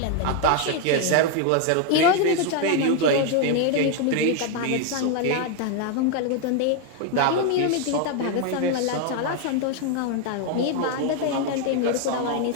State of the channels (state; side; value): different; both; correlation 0.01